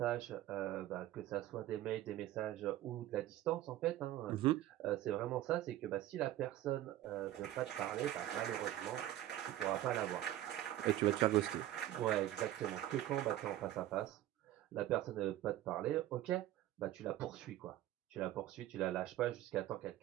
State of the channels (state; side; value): quieter; left; 13.8 dB